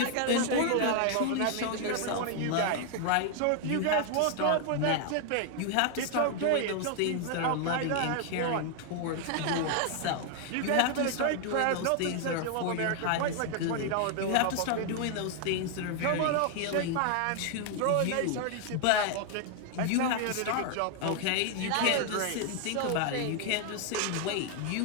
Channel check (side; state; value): both; different; correlation 0.00